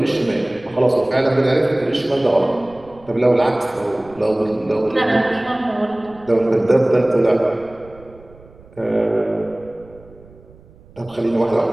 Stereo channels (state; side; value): noise; right; rumble, 24 dB below the sound